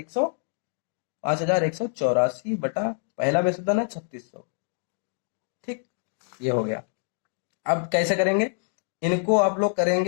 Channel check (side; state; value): right; silent; digital silence